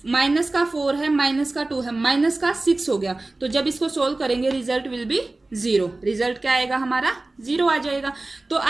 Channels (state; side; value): quieter; left; 3.0 dB